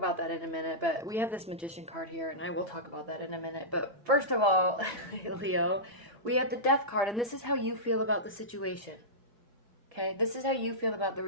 that in a minute, but we have this Magician card here, and I will talk about that in a minute. But first of all, Leo, we have the Death card, and this is how you feel about the situation. Okay? This is how you feel about the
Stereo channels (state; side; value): normal; both; correlation -0.15